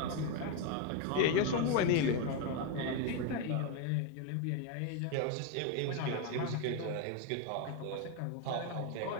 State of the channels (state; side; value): different; both; correlation 0.02